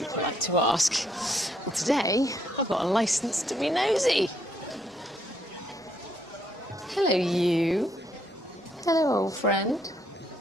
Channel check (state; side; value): normal; both; correlation 0.72